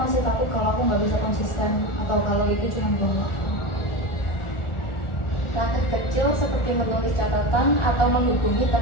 takut kalau aku nggak bisa konsisten, atau kalau itu cuma buang waktu. Langkah kecil seperti menulis catatan atau menghubungi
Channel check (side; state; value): right; late; 1.4 ms